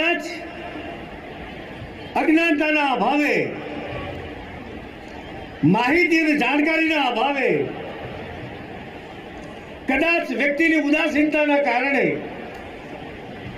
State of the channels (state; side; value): identical; both; correlation 1.00